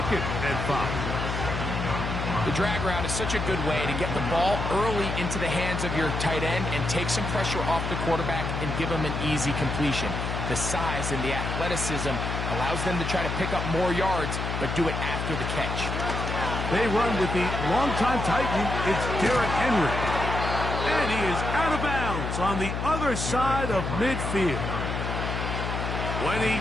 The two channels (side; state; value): left; noise; hum, 3 dB below the sound